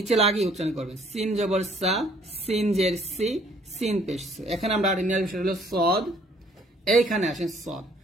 লাগিয়ে উচ্চারণ করবেন, সিন জবর সা, সিন জের সি, সিন পেশ সু। এখানে আমরা আর নেওয়ার বিষয় হলো সদ। এইখানে আসেন সদ।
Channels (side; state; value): both; normal; correlation 0.61